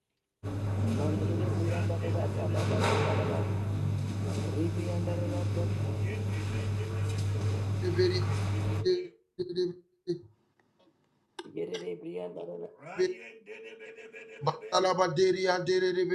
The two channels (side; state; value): both; identical; correlation 1.00